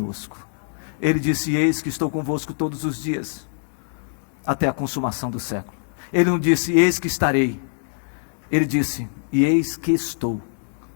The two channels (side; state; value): right; silent; digital silence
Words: Ele disse: eis que estou convosco todos os dias, até a consumação do século. Ele não disse: eis que estarei, ele disse: e eis que estou.